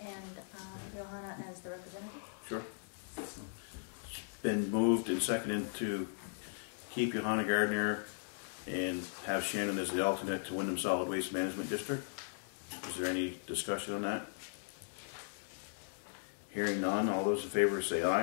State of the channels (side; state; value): right; silent; digital silence